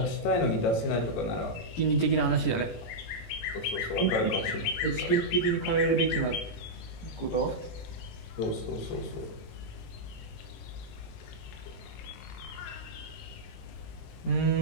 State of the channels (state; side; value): late; right; 17 ms